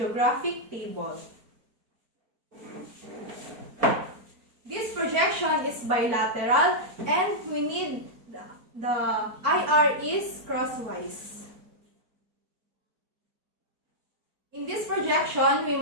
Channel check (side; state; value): left; late; 4.4 ms